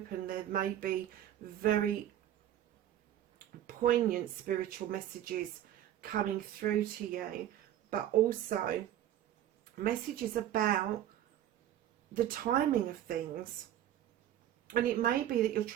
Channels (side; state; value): left; quieter; 11.7 dB